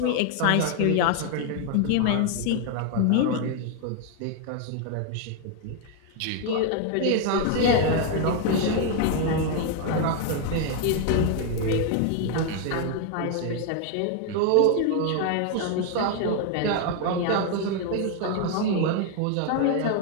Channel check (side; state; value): both; different; correlation 0.01